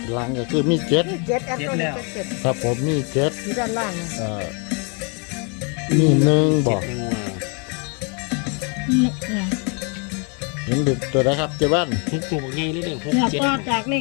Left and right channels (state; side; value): quieter; right; 35.8 dB